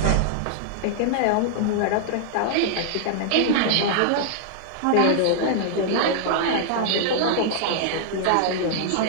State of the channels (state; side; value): different; both; correlation -0.01